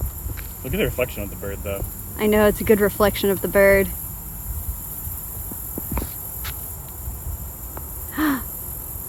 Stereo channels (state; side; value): identical; both; correlation 1.00